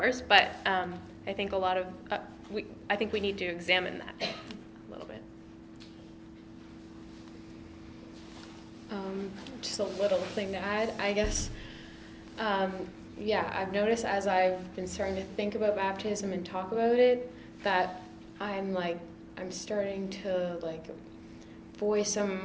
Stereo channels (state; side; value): identical; both; correlation 1.00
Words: but I think a lot of I think we need to examine that a little bit. Just a little thing to add, I guess. I've noticed as I've been starting to think about baptism and talk about it, that I'm starting to voice some of